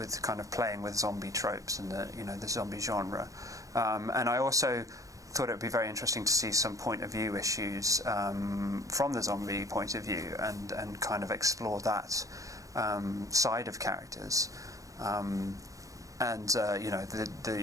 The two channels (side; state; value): left; late; 0.16 ms